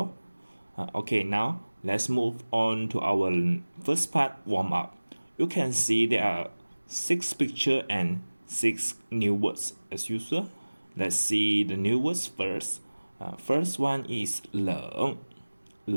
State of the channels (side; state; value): both; inverted; correlation -1.00